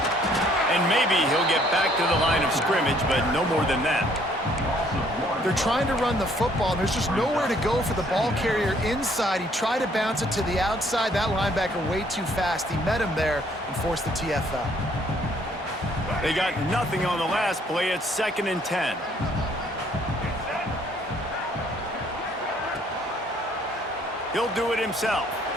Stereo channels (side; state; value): both; normal; correlation 0.63